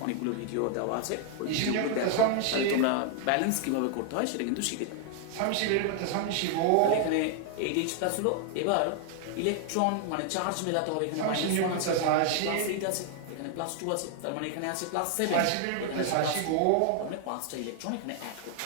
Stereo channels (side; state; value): both; different; correlation 0.00